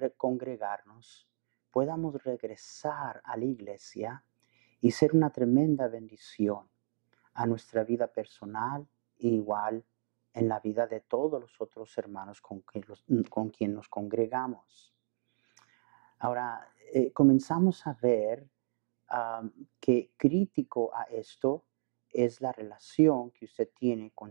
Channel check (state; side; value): silent; left; digital silence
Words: congregarnos, podamos regresar a la iglesia y ser una tremenda bendición a nuestra vida personal e igual en la vida de todos los otros hermanos con quien nos congregamos. Ahora, comenzamos a ver que crítico a esto es la relación que usted tiene